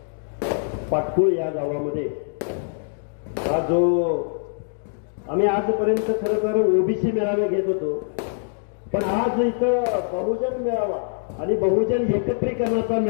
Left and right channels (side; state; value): right; silent; digital silence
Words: पाटकुळ या गावामध्ये हा जो आम्ही आजपर्यंत खरं तर ओबीसी मेळावे घेत होतो, पण आज इथं बहुजन मेळावा आणि बहुजन एकत्रीकरणाचा